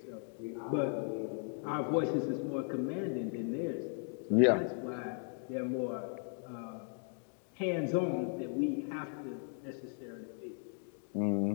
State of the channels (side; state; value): right; silent; 53 dB below the other